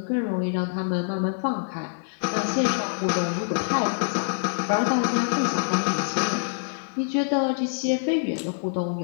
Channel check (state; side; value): silent; right; 56 dB below the other